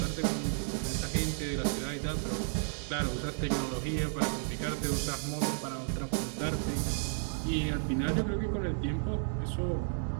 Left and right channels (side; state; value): left; silent; 56 dB below the other